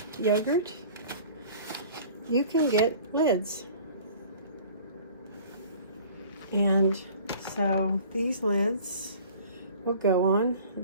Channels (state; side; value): inverted; both; correlation -0.47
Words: yogurt, you can get lids. And so these lids will go on